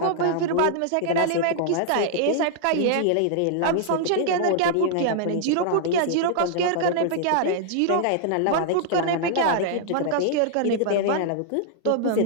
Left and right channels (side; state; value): both; different; correlation -0.01